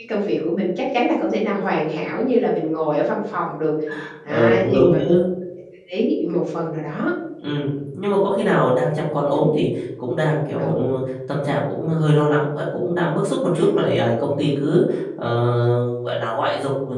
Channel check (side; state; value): both; identical; correlation 1.00